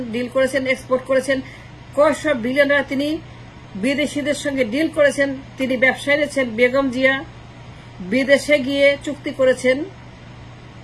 ডিল করেছেন, এক্সপোর্ট করেছেন। কয়শো বিলিয়ন ডলার তিনি বিদেশিদের সঙ্গে ডিল করেছেন। তিনি ব্যবসায় এনেছেন। বেগম জিয়া বিদেশে গিয়ে চুক্তি করেছেন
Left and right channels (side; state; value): both; identical; correlation 1.00